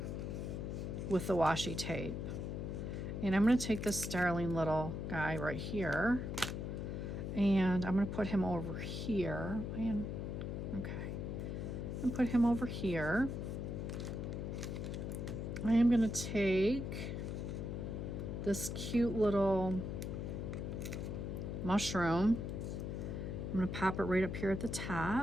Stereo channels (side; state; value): left; noise; hum, 4 dB below the sound